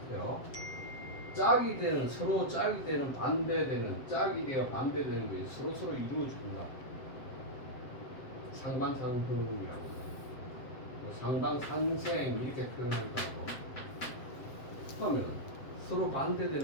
짝이 되는 서로 짝이 되는 반대되는 짝이 되어 반대되는 것이 서로 이루어준다. 상반상흥이라고 뭐 상방상생 이렇게 표현한다고 하면 서로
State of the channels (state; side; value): late; right; 7.6 ms